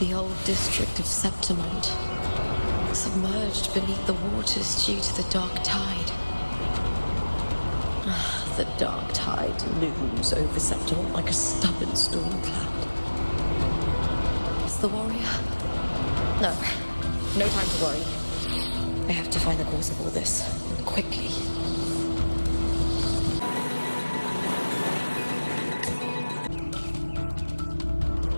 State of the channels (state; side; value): inverted; both; correlation -1.00